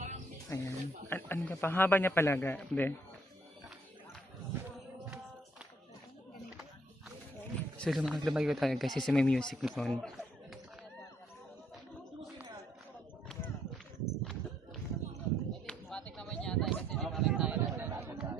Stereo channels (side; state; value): both; normal; correlation 0.68